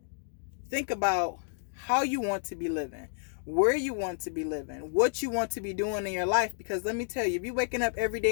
Think about how you want to be living, where you want to be living, what you want to be doing in your life. Because let me tell you, if you're waking up every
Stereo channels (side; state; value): right; silent; digital silence